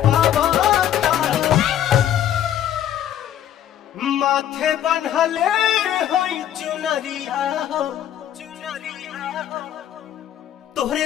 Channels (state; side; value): quieter; right; 10.9 dB